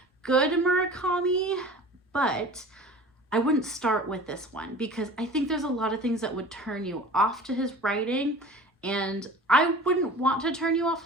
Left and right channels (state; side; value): normal; both; correlation 0.41